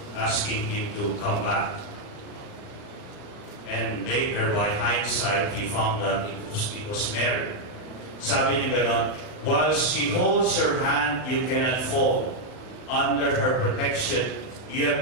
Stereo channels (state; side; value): late; right; 39 ms